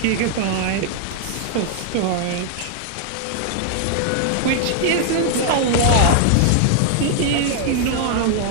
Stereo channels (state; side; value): different; both; correlation 0.00